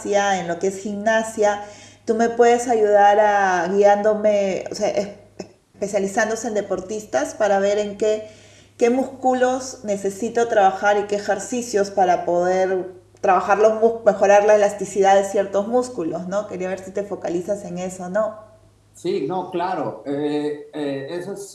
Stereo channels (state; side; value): identical; both; correlation 1.00